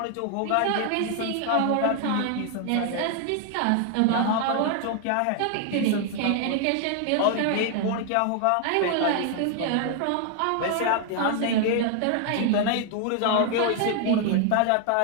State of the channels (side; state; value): both; different; correlation 0.00